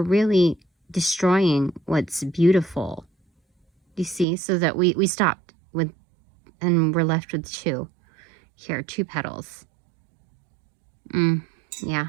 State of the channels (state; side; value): drops out; left; at 4.2 s